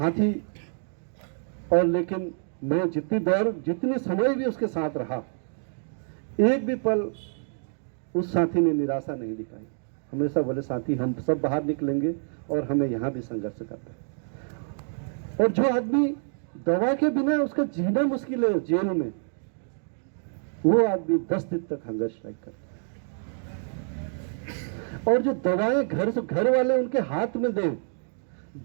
और लेकिन मैं जितने समय भी उसके साथ रहा, एक भी पल उस साथी ने निराशा नहीं दिखाई। हमेशा बोले साथी हम सब बाहर निकलेंगे और हमें यहाँ भी संघर्ष करना है। और जो आदमी दवा के बिना उसका जीना मुश्किल है जेल में, वो आदमी 10 दिन तक हंगर स्ट्राइक करता है। और जो दवाएं घर वाले उनके हाथ में दें,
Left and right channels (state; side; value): silent; left; 60 dB below the other